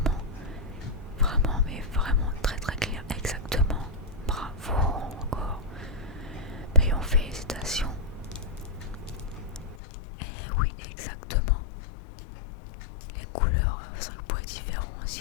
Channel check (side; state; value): right; drops out; at 9.8 s